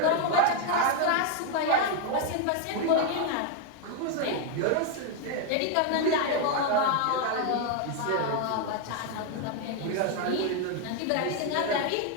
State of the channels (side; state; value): both; different; correlation 0.01